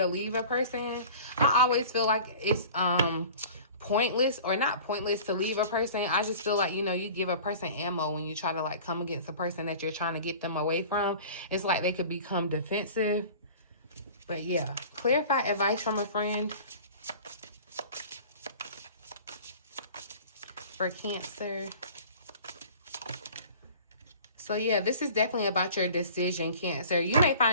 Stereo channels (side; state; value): both; inverted; correlation -0.42